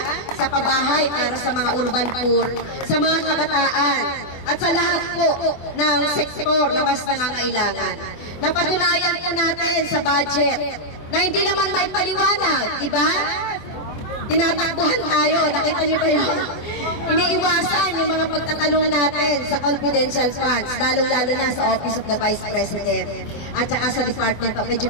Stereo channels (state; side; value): late; right; 24 ms